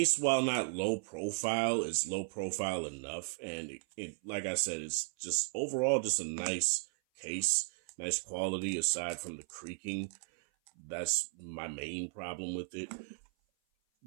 while not low profile, is low profile enough. And it, like I said, it's just overall just a nice case, nice quality aside from the creaking. That's my main problem with it.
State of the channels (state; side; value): silent; left; 54 dB below the other